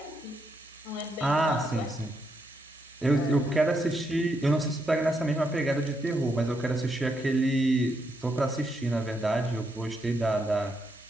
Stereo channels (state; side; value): normal; both; correlation 0.79